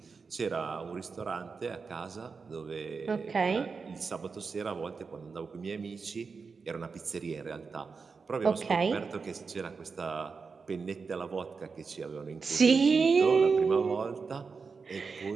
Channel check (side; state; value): left; quieter; 5.0 dB